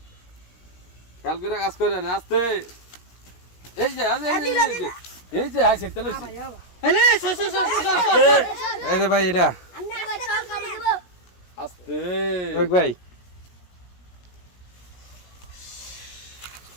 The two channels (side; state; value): right; late; 17 ms